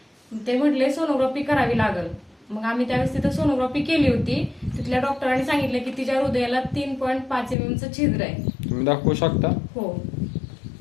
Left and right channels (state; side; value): drops out; right; at 7.6 s